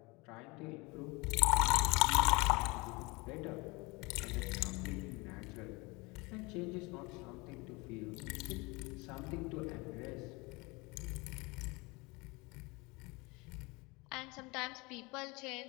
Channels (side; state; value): right; quieter; 25.7 dB